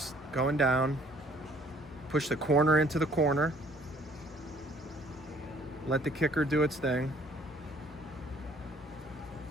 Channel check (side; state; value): both; normal; correlation 0.59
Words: going down, push the corner into the corner, let the kicker do its thing.